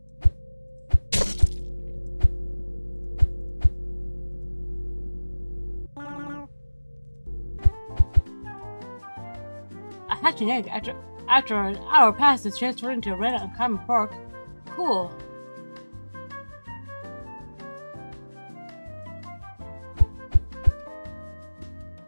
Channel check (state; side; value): inverted; both; correlation -1.00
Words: A hatching egg after an hour passed is transferred into a red uncommon pork. Cool.